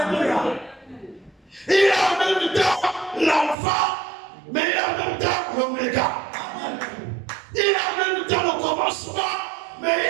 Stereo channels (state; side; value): drops out; left; at 3.6 s